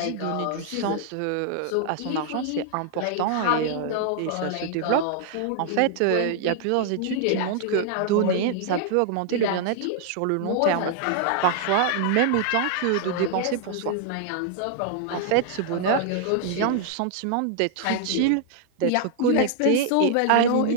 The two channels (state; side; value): different; both; correlation -0.01